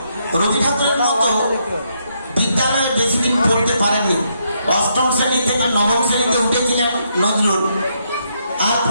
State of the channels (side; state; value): both; inverted; correlation -0.77